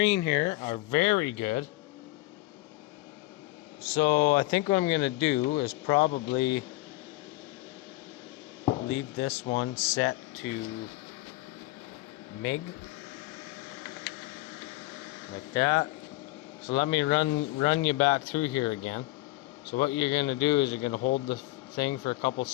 here are very good. So I think what I'm gonna do is probably leave this one set to MIG like that. So let me run you back through here again. So what you're gonna do is you're gonna hold the thing for a couple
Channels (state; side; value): quieter; right; 19.2 dB